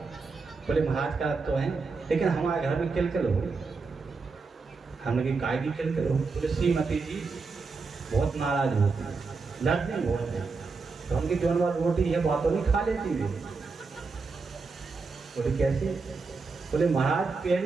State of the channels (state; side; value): quieter; left; 4.4 dB